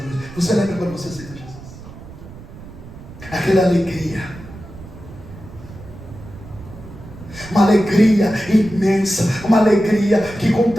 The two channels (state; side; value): noise; right; rumble, 16 dB below the sound